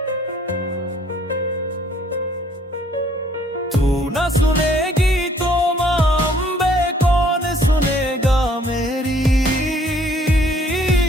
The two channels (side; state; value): both; normal; correlation 0.61